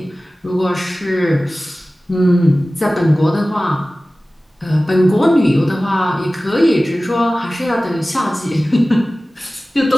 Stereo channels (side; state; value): both; normal; correlation 0.97